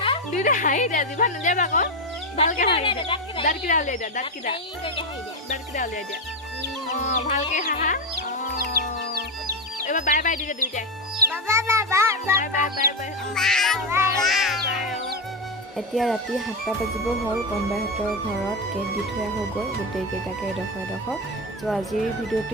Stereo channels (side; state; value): both; normal; correlation 0.11